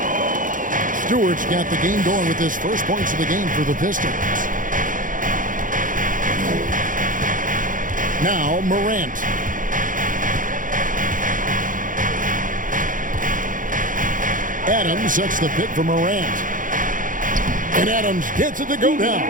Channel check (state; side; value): late; left; 0.39 ms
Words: Stewart's got the game going with his first points of the game for the Pistons. Now, Morant. Adams sets the pick for Morant. And Adams gets it to go